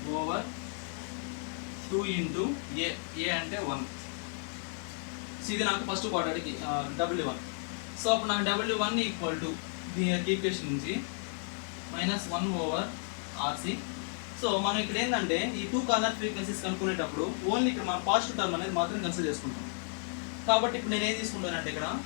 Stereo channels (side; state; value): right; silent; 56 dB below the other